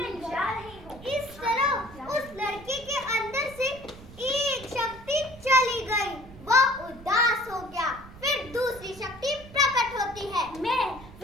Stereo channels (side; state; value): right; noise; rumble, 18 dB below the sound